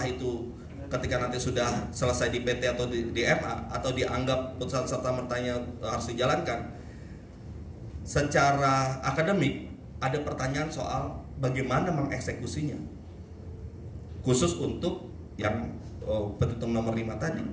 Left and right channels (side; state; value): both; identical; correlation 1.00